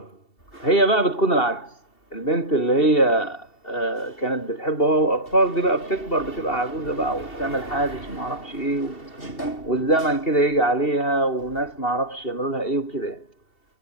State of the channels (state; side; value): late; right; 2.7 ms